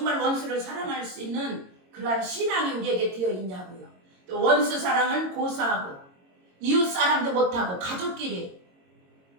원수를 사랑할 수 있는 그러한 신앙이 우리에게 되어 있냐고요. 또 원수 사랑은 고사하고 이웃 사람도 못하고 가족끼리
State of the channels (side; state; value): left; late; 22 ms